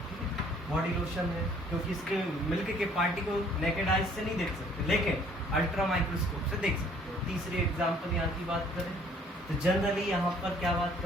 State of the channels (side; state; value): both; normal; correlation 0.59